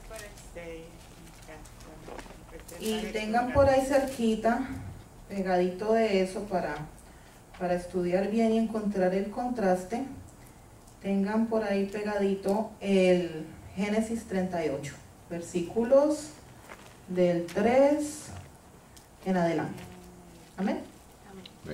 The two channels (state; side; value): identical; both; correlation 1.00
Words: Y tengan por ahí cerquita, pegadito de eso para estudiar bien y encontrar el contraste, tengan por ahí pegadito el Génesis 38, versículos del 3 en adelante. Amén.